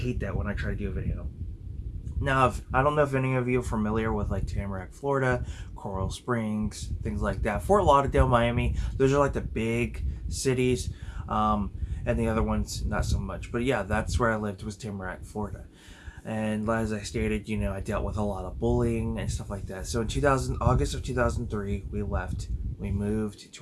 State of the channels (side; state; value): both; identical; correlation 1.00